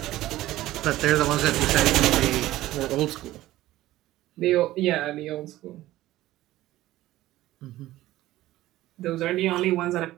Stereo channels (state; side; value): quieter; left; 15.8 dB